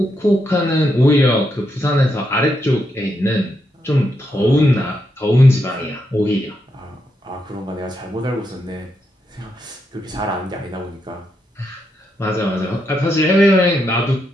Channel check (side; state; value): both; normal; correlation 0.81